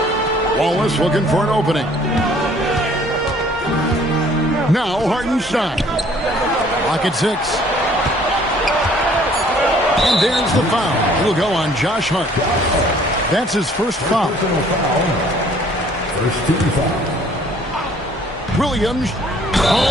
Wallace looking for an opening. Now Hartenstein. Lock at 6. And there's the foul. It'll go on Josh Hart. That's his first foul. First team foul. Williams.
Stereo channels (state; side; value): normal; both; correlation 0.57